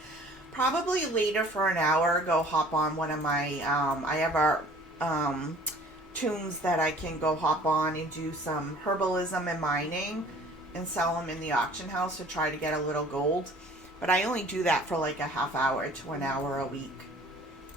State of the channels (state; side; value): normal; both; correlation 0.51